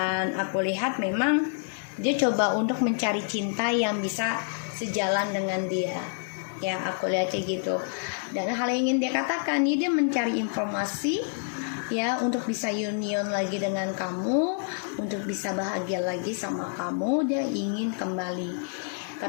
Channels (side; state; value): right; silent; 60 dB below the other